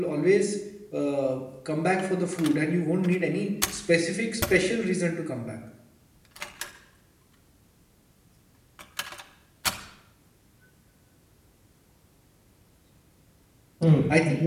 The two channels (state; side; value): identical; both; correlation 1.00